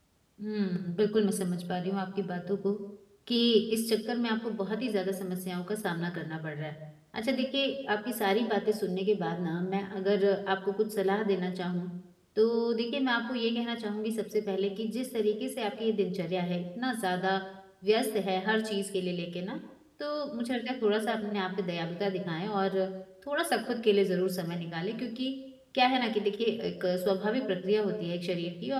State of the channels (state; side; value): identical; both; correlation 1.00